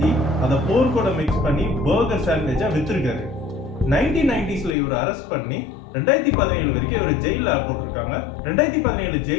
அதை போர்க்கோட மிக்ஸ் பண்ணி பர்கர் சாண்ட்விச்சா வித்திருக்காரு. 1990s இவர் அரெஸ்ட் பண்ணி 2017 வரைக்கும் இவர் ஜெயில போட்டிருக்காங்க. 2017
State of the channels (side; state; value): right; drops out; at 4.8 s